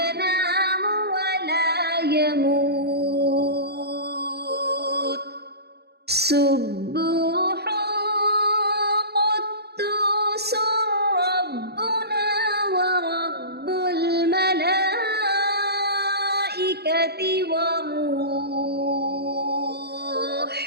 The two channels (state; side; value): late; left; 0.47 ms